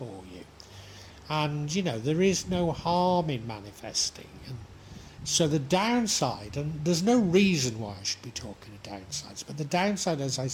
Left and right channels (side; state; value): both; identical; correlation 1.00